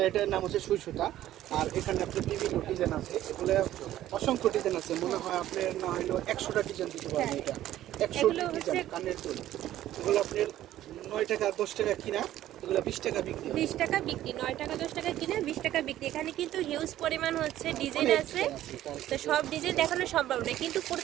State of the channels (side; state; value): left; quieter; 13.3 dB